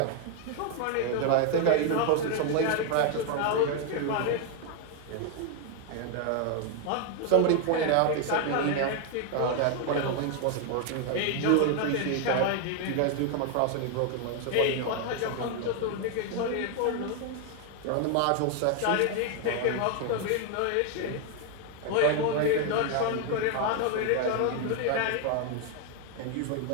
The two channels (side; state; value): both; different; correlation 0.01